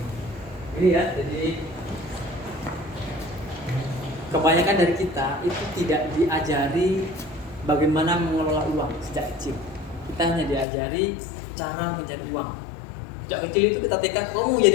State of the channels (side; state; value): right; drops out; at 10.7 s